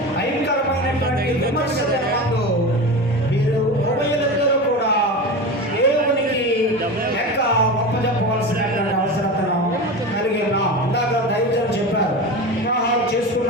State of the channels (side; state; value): both; normal; correlation 0.26